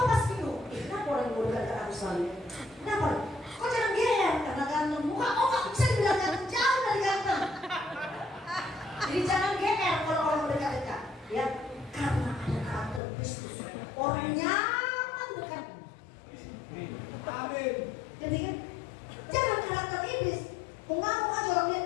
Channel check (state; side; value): drops out; right; at 13.0 s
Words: pasti lu, kenapa orang yang dekat ke aku selalu? Kenapa? Kau jangan GR karena ganteng. Muka kau gak bisa dibilang ganteng, jauh dari ganteng. Jadi jangan GR kalau orang dekat-dekat. Ya, karena ada karakter Kristus. Orang nyaman dekat. Amin. Jadi kan, jangan karakter iblis. Mengamuk aja orang